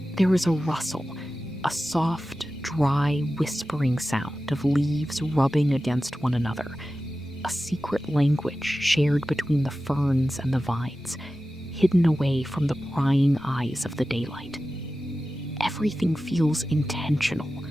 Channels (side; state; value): both; normal; correlation 0.94